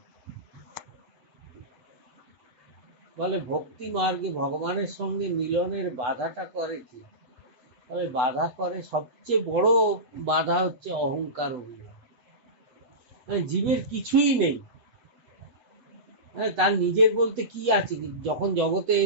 বলে ভক্তি মার্গে ভগবানের সঙ্গে মিলনের বাধাটা করে কি? তবে বাধা করে, সবচেয়ে বড় বাধা হচ্ছে অহংকার অভিমান। জীবের কিছুই নেই, তার নিজের বলতে কি আছে? যখন জগতে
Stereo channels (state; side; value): late; left; 8.1 ms